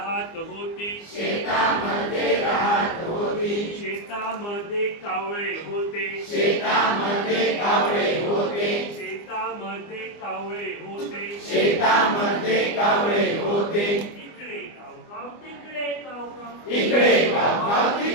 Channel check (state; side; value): late; right; 24 ms